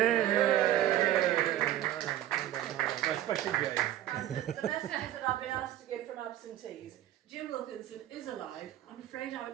Especially Jane. And the messages that I've been asked to give from absentees. Jim Wilkinson is alive. I'm afraid I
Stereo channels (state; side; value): quieter; left; 13.0 dB